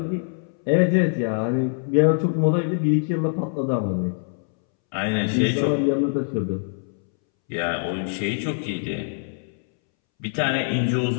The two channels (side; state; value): right; silent; 63 dB below the other